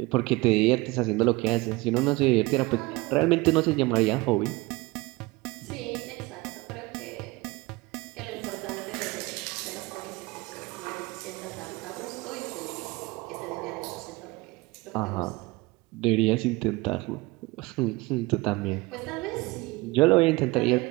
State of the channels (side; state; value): left; quieter; 22.6 dB